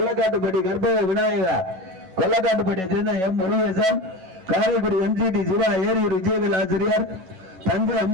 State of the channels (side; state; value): left; late; 11 ms